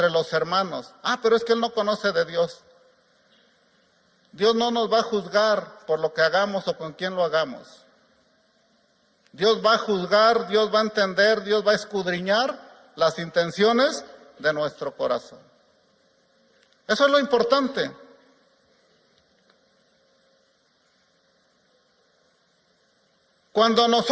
los hermanos. Pero es que él no conoce de Dios. Dios no nos va a juzgar por lo que hagamos o con quién lo hagamos. Dios va a juzgar, Dios va a entender, Dios va a escudriñar las intenciones de nuestro corazón. Eso es lo importante. Cuando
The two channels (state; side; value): identical; both; correlation 1.00